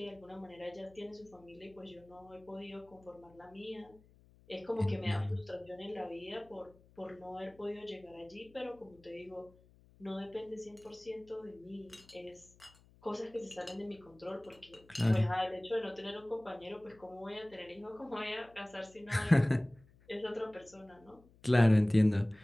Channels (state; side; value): noise; left; hum, 27 dB below the sound